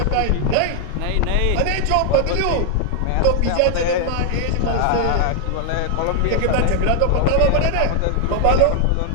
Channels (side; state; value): both; different; correlation 0.00